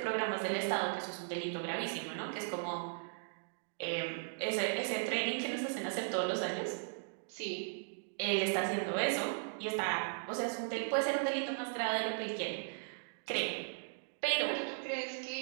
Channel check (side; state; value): left; silent; digital silence